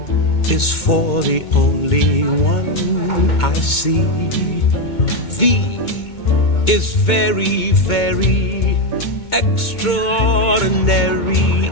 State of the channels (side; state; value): right; late; 2.2 ms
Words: is for the only one I see. V is very, very extraordinary.